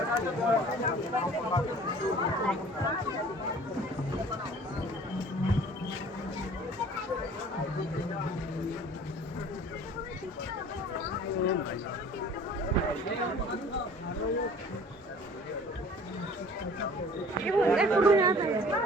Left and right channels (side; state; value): both; normal; correlation 0.48